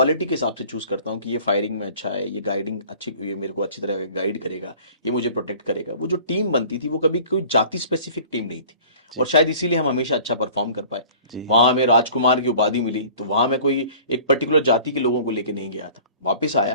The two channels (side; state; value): both; inverted; correlation -0.46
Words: के हिसाब से चूज करता हूँ कि ये फायरिंग में अच्छा है, ये गाइडिंग अच्छी, ये मेरे को अच्छी तरह गाइड करेगा, ये मुझे प्रोटेक्ट करेगा। वो जो टीम बनती थी वो कभी कोई जाति स्पेसिफिक टीम नहीं थी, और शायद इसीलिए हम हमेशा अच्छा परफॉर्म कर पाए। वहां हमें राजकुमार की उपाधि मिली, तो वहां मैं कोई एक पर्टिकुलर जाति के लोगों को लेके नहीं गया था। वापिस